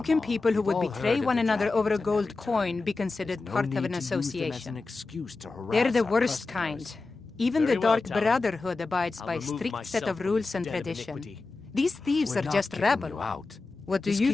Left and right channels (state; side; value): quieter; right; 3.7 dB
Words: can people who would We've all betray heard one of the another over a dragons gold and every coin time. be considered There's no part need of an to use them as association? an excuse to harass They're the our worst customers. kind. Even Very the well, Dark Talon. Brotherhood abides I'll by remove strict set myself of from rules this and den of tradition. iniquity. These thieves We're are not just kicking rabble. you out. What do Just you